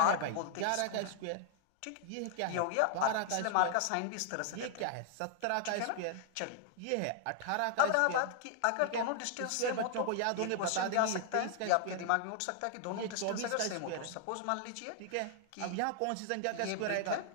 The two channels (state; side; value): different; both; correlation 0.00